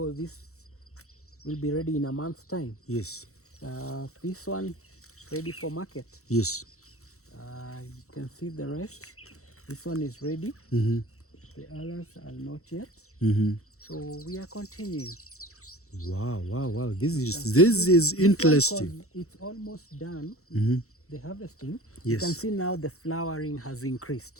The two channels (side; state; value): right; late; 0.64 ms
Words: this will be ready in a month's time. Yes. This one ready for market. Yes. You can see the rest. This one is ready. The others are not yet. So we are continuing. Wow. This is interesting. It's almost done. The harvesting. Yes. You can see now the flowering has